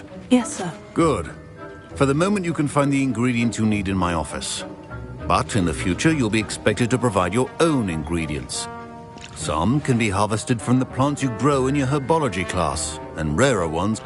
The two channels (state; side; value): identical; both; correlation 1.00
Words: Yes, sir. Good. For the moment, you can find the ingredients you need in my office. But in the future, you'll be expected to provide your own ingredients. Some can be harvested from the plants you grow in your herbology class, and rarer ones